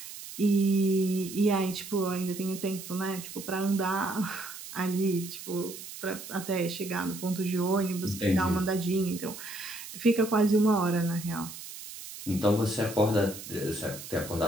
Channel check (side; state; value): right; noise; hiss, 12 dB below the sound